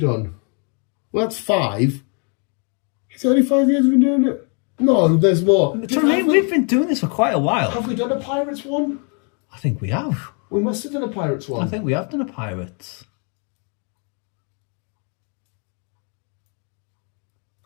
Well, that's 5. Is it only 5 years we've been doing it? No, there's more. We've been doing this for quite a while. Have we done a Pirates one? I think we have. We must have done a Pirates one. I think we have done a Pirates.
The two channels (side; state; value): right; quieter; 37.8 dB